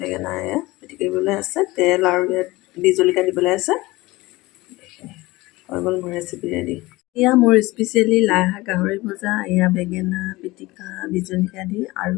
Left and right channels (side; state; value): right; quieter; 20.5 dB